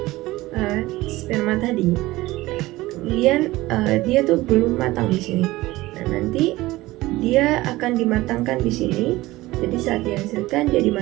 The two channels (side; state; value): left; quieter; 18.6 dB